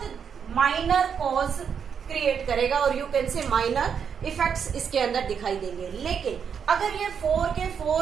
माइनर कॉज क्रिएट करेगा और you can say minor effects इसके अंदर दिखाई देंगे। लेकिन अगर ये 4 के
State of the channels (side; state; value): left; quieter; 7.1 dB